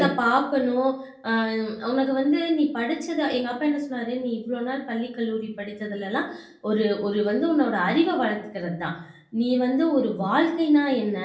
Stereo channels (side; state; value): both; identical; correlation 1.00